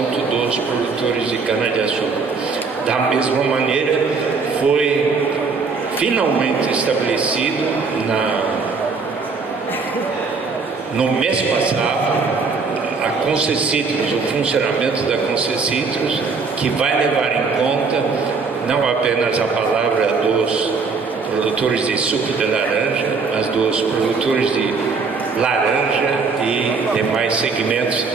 dos produtores de cana-de-açúcar. Da mesma maneira, foi finalmente estabelecido no mês passado a Concecitrus, o funcionamento da Concecitrus, que vai levar em conta não apenas a palavra dos produtores de suco de laranja, mas dos produtores de laranja e demais segmentos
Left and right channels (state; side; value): quieter; left; 4.6 dB